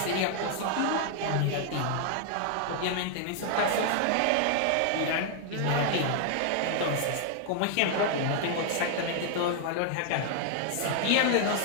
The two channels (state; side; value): different; both; correlation 0.00